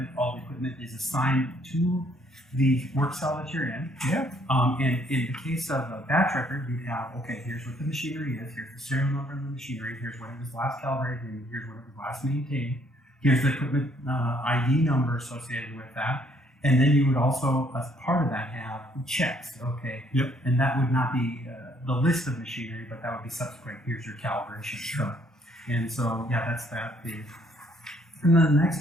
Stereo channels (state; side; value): normal; both; correlation 0.66